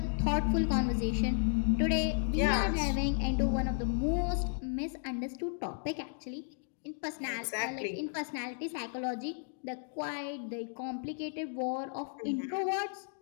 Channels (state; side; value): silent; right; digital silence